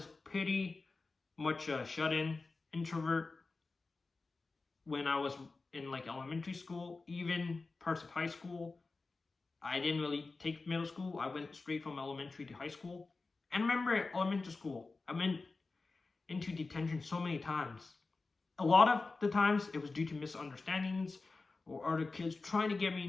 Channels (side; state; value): right; quieter; 3.8 dB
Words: pretty much a shut-in introvert when I was in like elementary school, even parts of high school. I didn't really take middle school. I went straight from elementary to high school. And remember at elementary school, I went into detention so many times. A lot of the times it was due to misunderstandings or other kids trying to get me